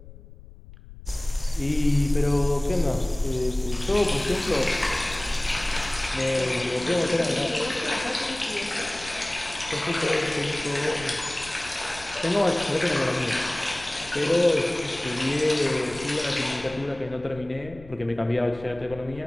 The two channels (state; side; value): noise; left; rumble, 18 dB below the sound